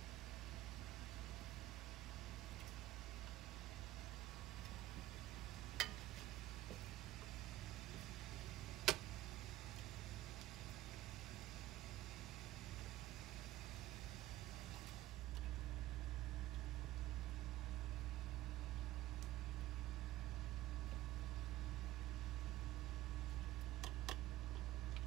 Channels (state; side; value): quieter; left; 15.3 dB